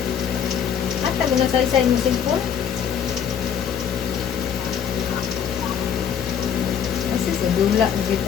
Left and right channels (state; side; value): quieter; right; 8.3 dB